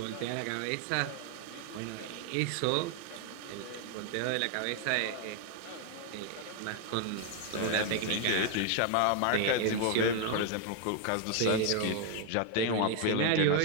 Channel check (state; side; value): different; both; correlation 0.01